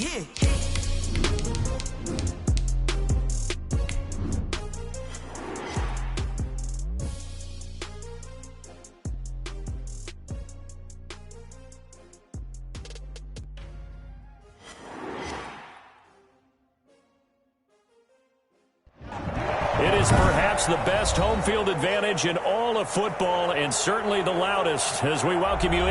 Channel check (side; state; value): both; identical; correlation 1.00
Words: It is perhaps the best home field advantage in all of football, and certainly the loudest, as we welcome you